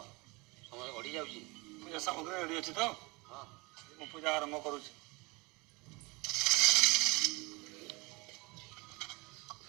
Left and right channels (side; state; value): left; quieter; 25.5 dB